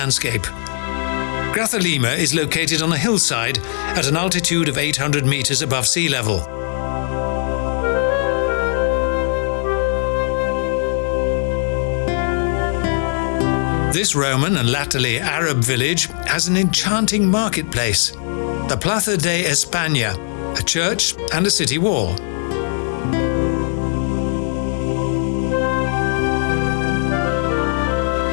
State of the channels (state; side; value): silent; right; 66 dB below the other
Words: Grazalema is located on a hillside at an altitude of 800 meters above sea level. This Roman and latterly Arab village has an enchanting marketplace, the Plaza de España, a church and a city wall.